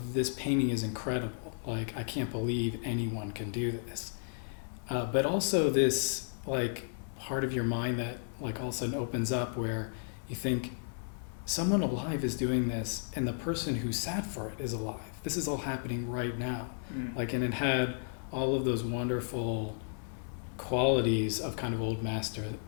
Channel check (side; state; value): right; silent; digital silence